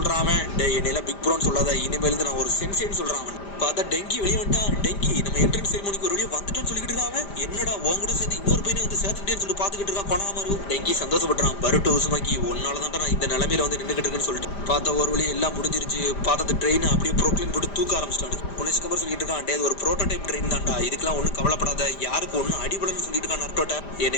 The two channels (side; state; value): right; late; 5.0 ms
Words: அவன். டே என்னையில பிக் ப்ரோன்னு சொல்லாத, இனிமேல் நான் ஒரு சென்சேன்னு சொல்றான் அவன். பார்த்தா டெங்கி வெளியே வந்துட்டான். டெங்கி நம்ம என்ட்ரன்ஸ் செரிமோனிக்கு ஒரு வழியா வந்துட்டோன்னு சொல்லிட்டு இருக்கான். என்னடா உன் கூட சேர்ந்து இன்னொரு பையனை வந்து சேர்த்துக்கிட்டேன்னு சொல்லிட்டு பார்த்துக்கிட்டு இருக்கான் கொணங்குமரு. டெங்கி சந்தோஷப்படுறான். பருட்டோ உசுமாக்கி ஒன்னாலதான் நான் இந்த நிலைமையில வந்து நின்றுகிட்டு இருக்குன்னு சொல்லிட்டு பார்த்தா ஒரு வழி எல்லாம் முடிஞ்சிருச்சு. பார்த்தா அந்த ட்ரெயின் அப்படியே ப்ரோக்ளைன் போட்டு தூக்க ஆரம்பிச்சிட்டாங்க. உன்னை சிக்கமர் சொல்லிட்டு இருக்கான். டே ஒரு ப்ரோட்டோடைப் ட்ரெயின் தான்டா, இதுக்கெல்லாம் ஒன்றும் கவலைப்படாத, யாருக்கு ஒன்றும் அடிபடன்னு சொல்லிட்டு இருக்கான் நருட்டோட்ட.